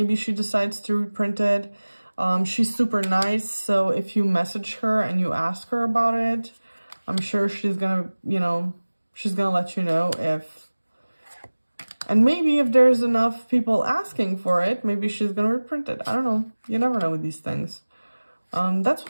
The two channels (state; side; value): inverted; both; correlation -1.00